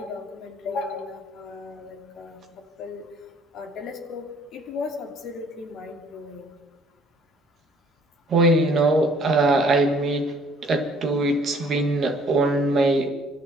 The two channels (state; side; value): normal; both; correlation 0.58